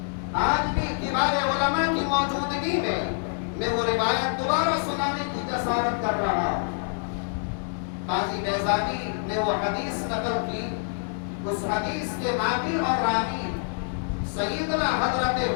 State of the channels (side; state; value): right; silent; digital silence